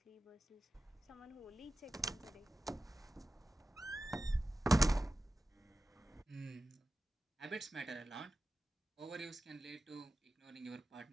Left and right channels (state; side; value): normal; both; correlation 0.94